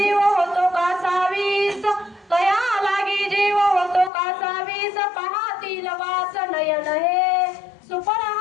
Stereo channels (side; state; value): right; drops out; at 4.1 s